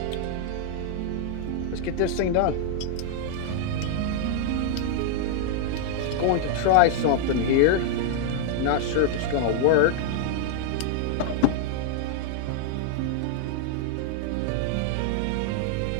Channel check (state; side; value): different; both; correlation 0.00